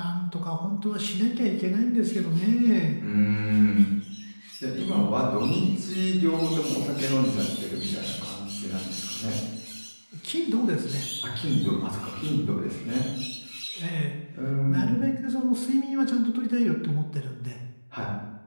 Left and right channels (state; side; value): inverted; both; correlation -1.00